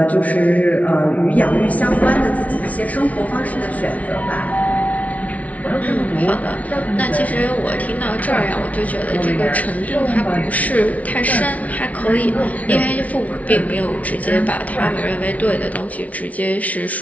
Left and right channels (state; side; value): late; right; 0.069 ms